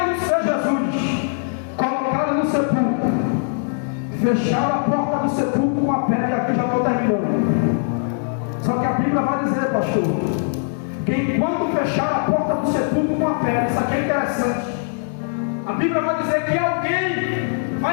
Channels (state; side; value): silent; right; digital silence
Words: não ser Jesus, colocaram no sepulcro, fecharam a porta do sepulcro com a pedra. E aqui já estou terminando. Só que a Bíblia vai dizer, pastor, que enquanto fecharam a porta do sepulcro com a pedra, isso aqui é interessante. A Bíblia vai dizer que alguém